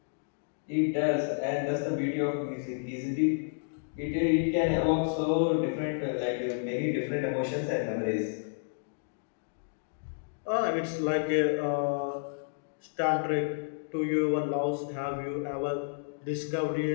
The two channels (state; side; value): silent; right; digital silence